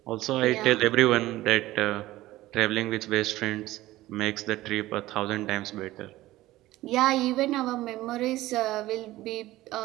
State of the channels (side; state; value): left; quieter; 16.8 dB